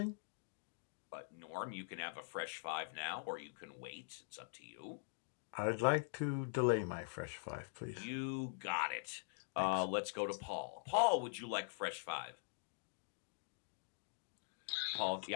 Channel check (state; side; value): silent; right; digital silence